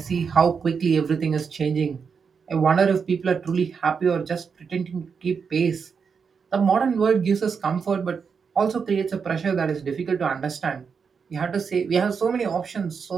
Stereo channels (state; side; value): quieter; left; 6.0 dB